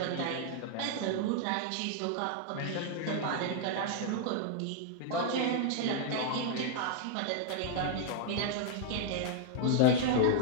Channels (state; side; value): different; both; correlation 0.00